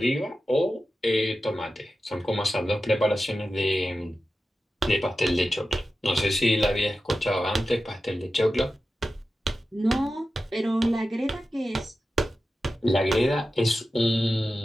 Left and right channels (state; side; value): normal; both; correlation 0.93